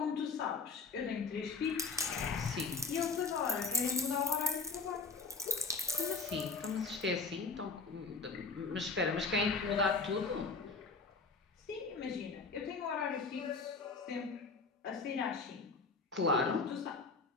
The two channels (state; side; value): quieter; right; 4.3 dB